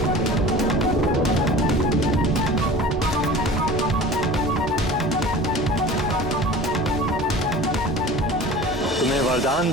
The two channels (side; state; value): both; normal; correlation 0.40